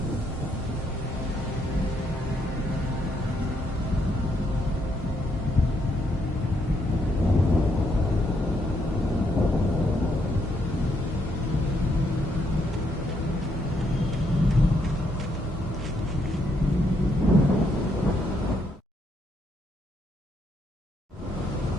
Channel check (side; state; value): both; normal; correlation 0.74